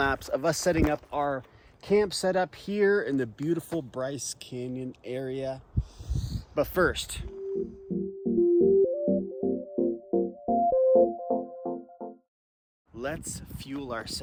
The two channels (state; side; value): identical; both; correlation 1.00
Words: of us setting up our camp setup here in the beautiful Bryce Canyon area. But first, let's fuel